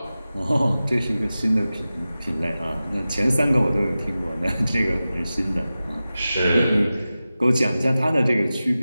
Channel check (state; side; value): inverted; both; correlation -0.95